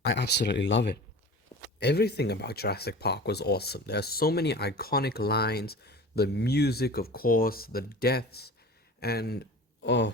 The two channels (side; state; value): both; normal; correlation 0.36